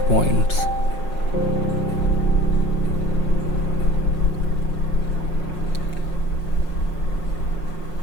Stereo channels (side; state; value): right; late; 5.5 ms